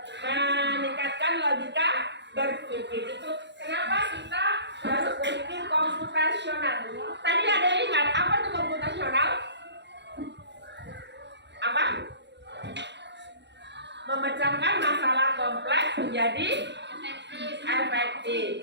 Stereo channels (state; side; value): late; left; 0.51 ms